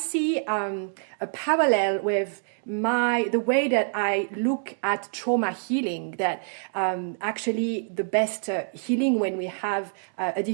a parallel with the way that I look at trauma healing, that actually the best healing when we have a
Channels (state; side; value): silent; left; digital silence